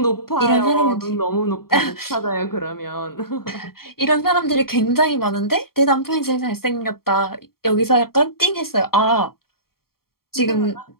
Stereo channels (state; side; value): late; right; 0.93 ms